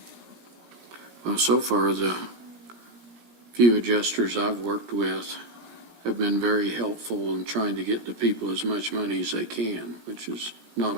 Well, so far, the few adjusters I've worked with have been very helpful in trying to get the people as much money as they can, which is not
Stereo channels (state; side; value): late; left; 17 ms